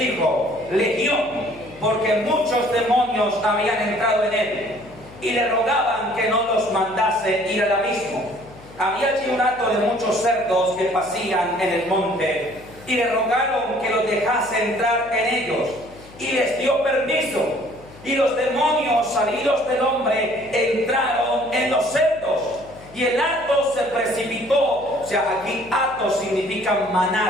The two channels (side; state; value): left; noise; hum, 21 dB below the sound